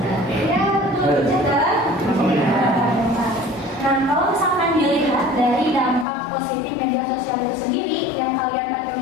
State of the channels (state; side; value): drops out; right; at 6.1 s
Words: Ya betul, jaga. Nah, kalau misalkan dilihat dari dampak positif media sosial itu sendiri yang kalian pakai